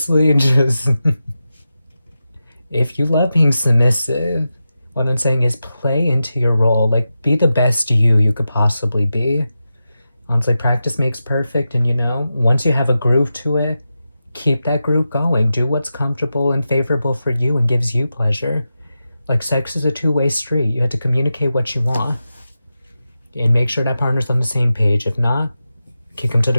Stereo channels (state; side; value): inverted; both; correlation -0.91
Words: just if you love being submissive, what I'm saying is play into your role. Like, be the best you could possibly be. Honestly, practice makes perfect. And, once you have a groove to it, keep that groove going. Do what's comfortable and favorable for you and gives you pleasure. Like, sex is a two-way street. You have to communicate what you want. And make sure that partner's on the same page. If not, kick them to